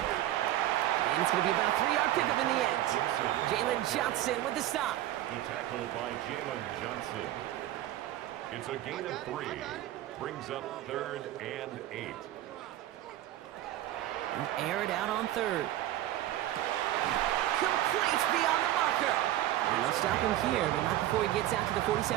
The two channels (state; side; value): quieter; left; 13.8 dB